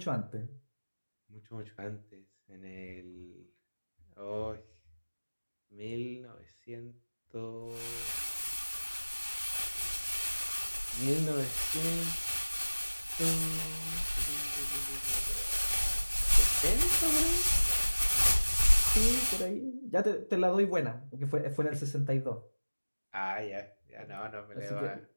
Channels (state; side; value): inverted; both; correlation -1.00